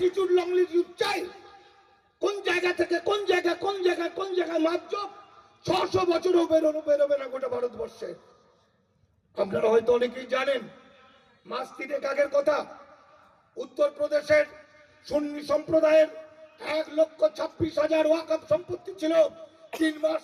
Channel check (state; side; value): identical; both; correlation 1.00